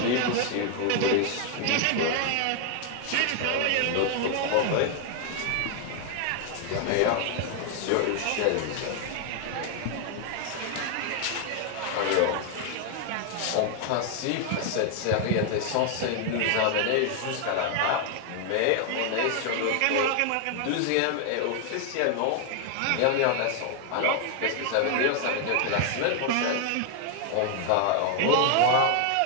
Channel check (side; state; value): both; different; correlation 0.00